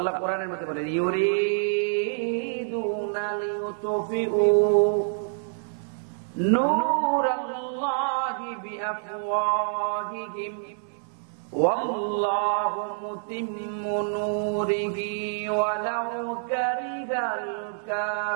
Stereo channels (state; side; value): silent; left; digital silence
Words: কোরআনের মধ্যে বলেন, ইউরিদুনা লিউতফিউ নূরাল্লাহি বিআফওয়াহিহিম ওয়াল্লাহু মুতিম্মু নূরিহি ওয়ালাউ কারিহাল